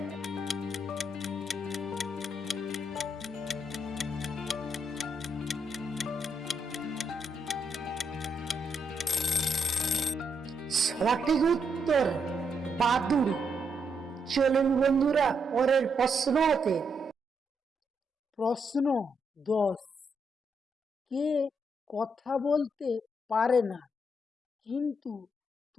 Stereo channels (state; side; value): normal; both; correlation 0.79